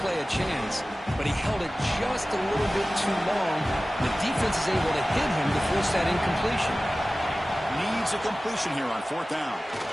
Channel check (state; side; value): normal; both; correlation 0.97